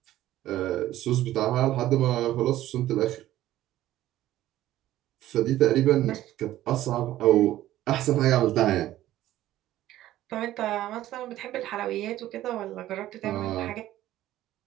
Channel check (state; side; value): quieter; left; 14.2 dB